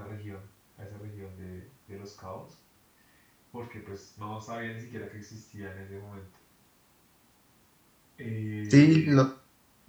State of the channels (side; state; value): both; identical; correlation 1.00